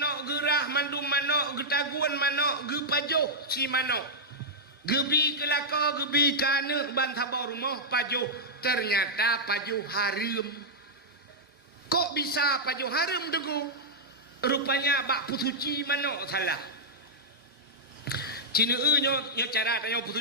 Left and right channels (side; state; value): both; normal; correlation -0.07